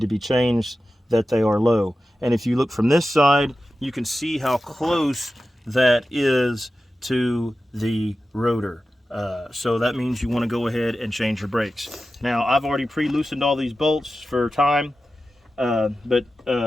be changed, that they are low. And if you look from this side, you can see how close that is to the rotor. So that means you want to go ahead and change your brakes. Now I've already pre-loosened all these bolts for time, but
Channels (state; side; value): normal; both; correlation 0.93